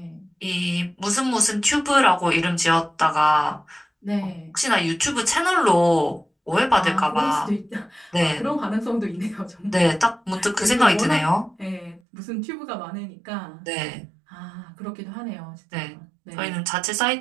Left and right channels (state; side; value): drops out; left; at 12.0 s